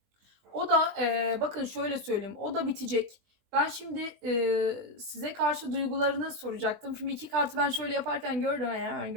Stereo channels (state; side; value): late; left; 20 ms